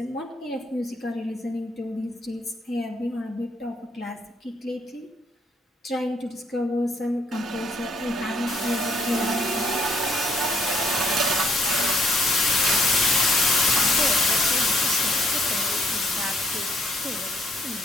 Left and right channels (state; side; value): normal; both; correlation 0.69